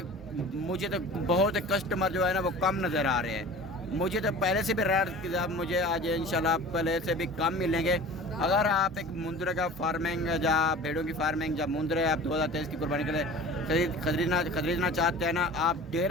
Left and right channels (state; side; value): normal; both; correlation 0.40